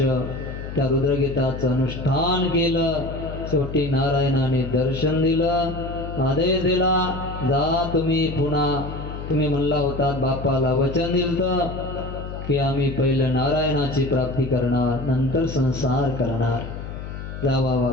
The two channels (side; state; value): left; noise; hum, 9 dB below the sound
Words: त्या रुद्रगीताचं अनुष्ठान केलं. शेवटी नारायणाने दर्शन दिलं, आदेश दिला, जा तुम्ही पुन्हा. तुम्ही म्हणला होता, बापाला वचन दिलं की आम्ही पहिलं नारायणाची प्राप्ती करणार, नंतर संसार करणार. जावा